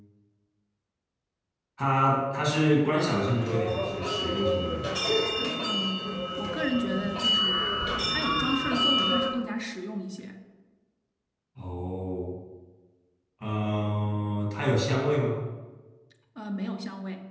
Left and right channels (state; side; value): identical; both; correlation 1.00